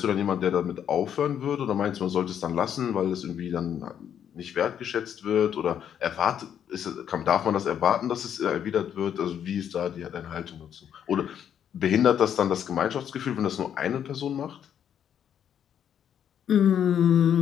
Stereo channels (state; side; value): quieter; right; 9.1 dB